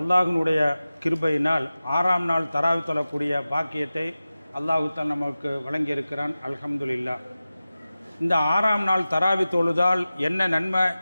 கிருபையினால் 6ஆம் நாள் தராவி தொழக்கூடிய பாக்கியத்தை அல்லாஹ் தான் நமக்கு வழங்கியிருக்கிறான். அல்ஹம்துலில்லா. இந்த 6ஆம் நாள் தராவி தொழுதால் என்ன நன்மை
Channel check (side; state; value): both; inverted; correlation -0.95